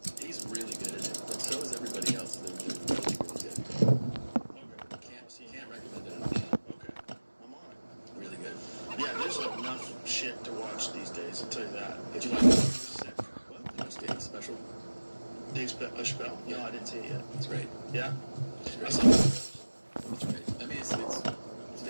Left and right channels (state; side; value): inverted; both; correlation -1.00